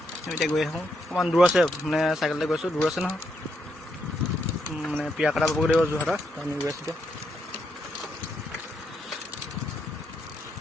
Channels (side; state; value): both; normal; correlation 0.79